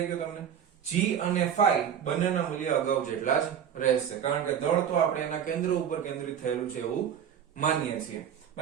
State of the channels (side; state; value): left; quieter; 8.7 dB